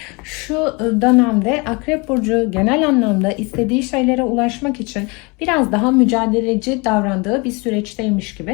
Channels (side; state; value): right; quieter; 28.4 dB